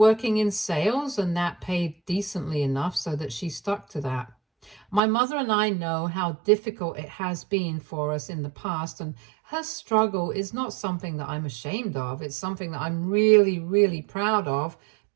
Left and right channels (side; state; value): left; drops out; at 5.0 s